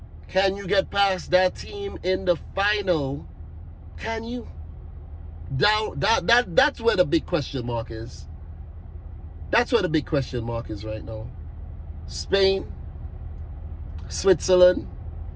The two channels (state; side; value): identical; both; correlation 1.00